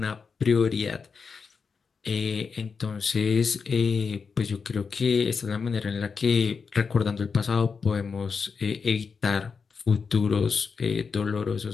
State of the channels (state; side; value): quieter; right; 5.4 dB